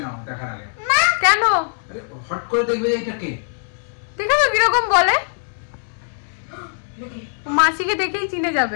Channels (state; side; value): silent; right; digital silence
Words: নাও দেখার আগে। কেন? হট করে দেখবে এটা কে, দেখো তো কিরকম বলে, মাসিকে দেখেই চিনে